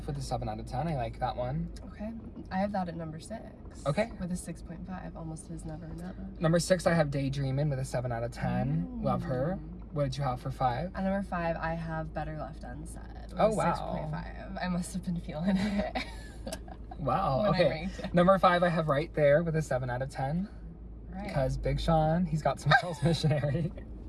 with a 7 out of 10. I like that one. Okay. I have that at number 6. Okay. With a 6.5. Almost Is Never Enough. Number 6, I have Daydreamin with a 7 out of 10. Love her. What did you have for 5? At number 5, I have Better Left Unsaid. With Oh, a wow. 6.5. I must have been feeling it. Wow. When I Okay. ranked it. Number 5, I have Right There with a 7 out of 10. Right. Because Big Sean, he's got some girls missionary.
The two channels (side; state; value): both; identical; correlation 1.00